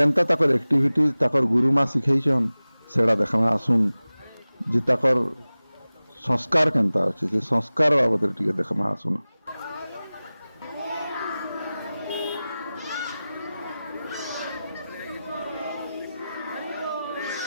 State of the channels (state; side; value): inverted; both; correlation -0.97